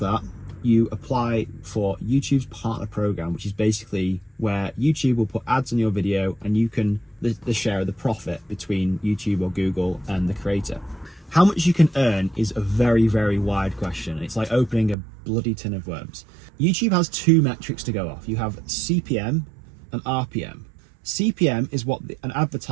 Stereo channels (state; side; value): drops out; left; at 15.0 s